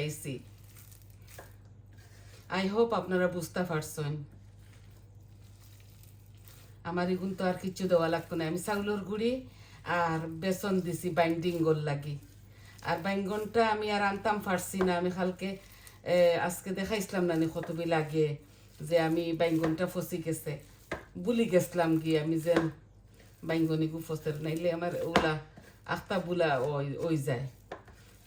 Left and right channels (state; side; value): identical; both; correlation 1.00